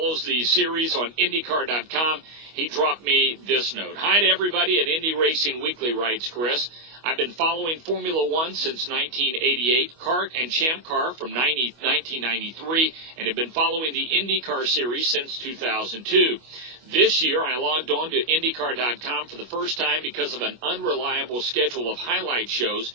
the series on IndyCar.com. He dropped me this note. "Hi to everybody at Indy Racing Weekly," writes Chris. "I've been following Formula One since 1988, kart and champ car from 1993, and have been following the IndyCar series since 2002. This year, I logged on to IndyCar.com for the first time because of an unreliable schedule of highlight shows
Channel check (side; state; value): left; late; 25 ms